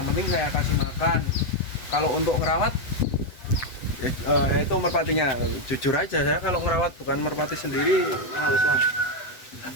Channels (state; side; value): late; right; 8.0 ms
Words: penting saya kasih makan. Kalau untuk ngerawat itu merpatinya, jujur aja saya kalau ngerawat bukan merpati sendiri males lah.